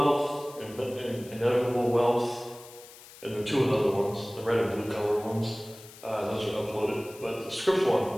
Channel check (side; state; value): left; noise; hiss, 19 dB below the sound